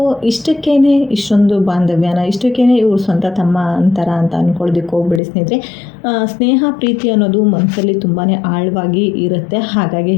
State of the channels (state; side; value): drops out; right; at 5.2 s